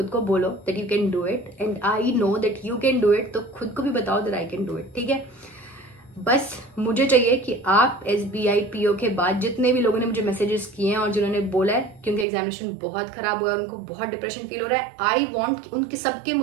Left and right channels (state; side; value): drops out; left; at 12.2 s